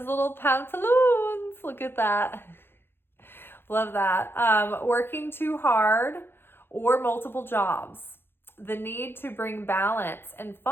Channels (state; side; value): late; right; 0.11 ms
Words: little pantaloons. Look at that. Love that. Working too hard or multiple jobs. The need to bring balance and